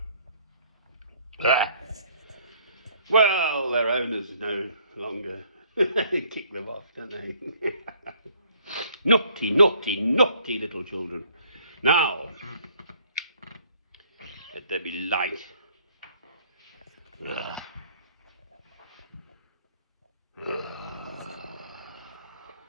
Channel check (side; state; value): both; inverted; correlation -0.61